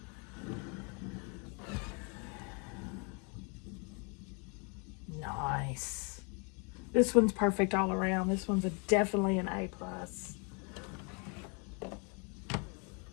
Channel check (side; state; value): right; quieter; 34.3 dB